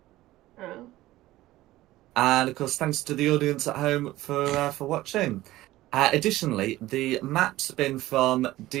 And of course, thanks to the audience at home for watching. Additionally, the map's been from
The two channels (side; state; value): left; quieter; 16.6 dB